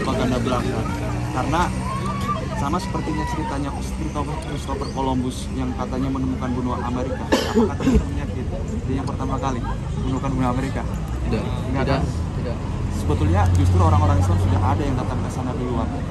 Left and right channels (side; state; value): both; identical; correlation 1.00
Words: belaka, karena sama sepertinya ceritanya Christopher Columbus yang katanya menemukan benua Amerika. Apakah teman-temannya gitu? Dia yang pertama kali menemukan benua Amerika? Tidak. Sebetulnya justru orang-orang Islam sudah ada yang datang ke sana duluan.